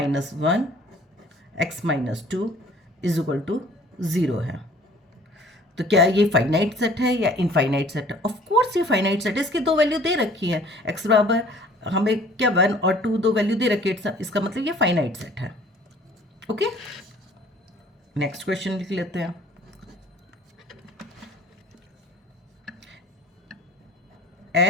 one x minus two is equal to 0 है। तो क्या ये फाइनाइट सेट है या इनफाइनाइट सेट है? ऑफ कोर्स ये फाइनाइट सेट है, इसकी दो वैल्यू दे रखी है, एक्स बराबर हमें क्या 1 और 2 दो वैल्यू दे रखी है, इसका मतलब ये फाइनाइट सेट है। ओके, नेक्स्ट क्वेश्चन लिख लेते हैं।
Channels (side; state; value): both; normal; correlation 0.52